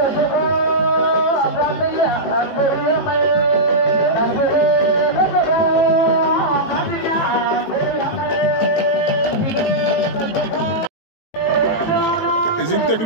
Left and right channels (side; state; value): right; late; 18 ms